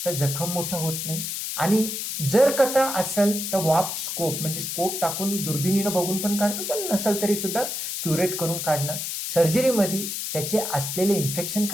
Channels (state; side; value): noise; left; hiss, 4 dB below the sound